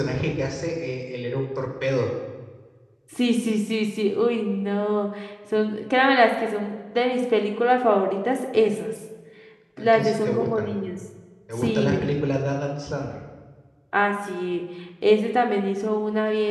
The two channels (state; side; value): identical; both; correlation 1.00